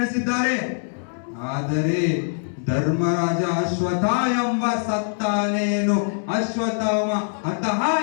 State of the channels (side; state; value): right; silent; 63 dB below the other